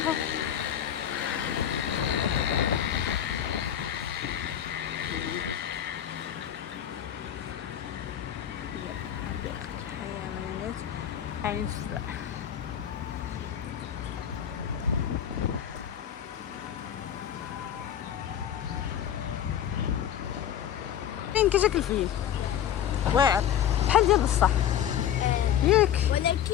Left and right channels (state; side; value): quieter; right; 10.0 dB